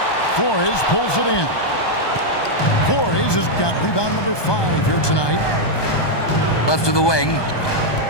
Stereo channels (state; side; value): late; right; 1.2 ms